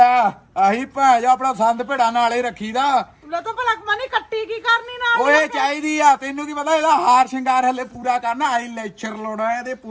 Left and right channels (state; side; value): identical; both; correlation 1.00